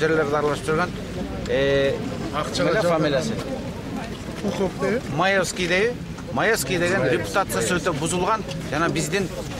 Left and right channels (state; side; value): identical; both; correlation 1.00